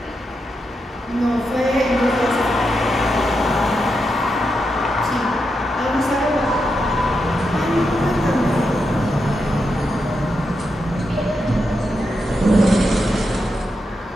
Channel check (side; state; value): both; normal; correlation 0.85